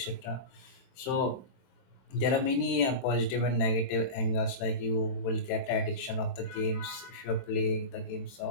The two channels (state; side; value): late; right; 22 ms